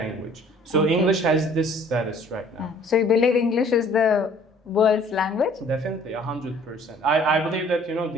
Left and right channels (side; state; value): both; normal; correlation 0.55